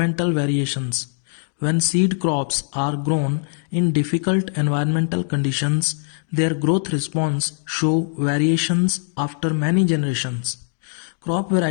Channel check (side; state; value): right; silent; 56 dB below the other